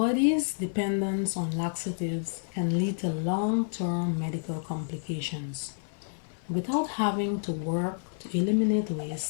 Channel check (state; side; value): silent; right; 58 dB below the other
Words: dependence on laxatives can lead to long-term medical complications. Without having to work to eliminate